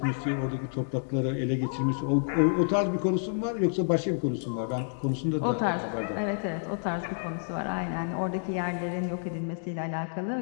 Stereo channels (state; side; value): silent; right; digital silence